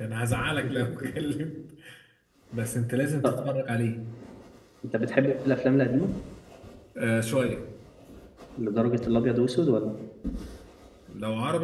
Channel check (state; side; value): identical; both; correlation 1.00